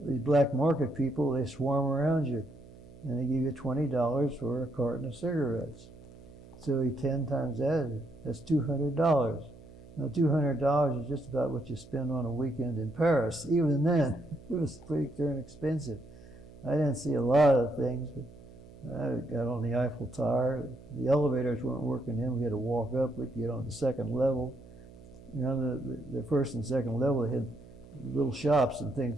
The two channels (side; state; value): right; noise; hum, 20 dB below the sound